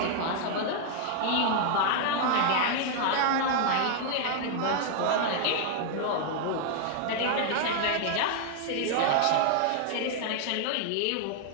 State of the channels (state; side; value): different; both; correlation 0.00